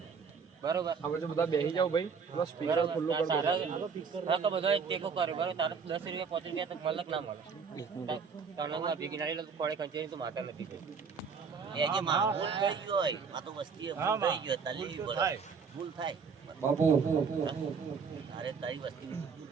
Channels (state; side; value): quieter; left; 5.7 dB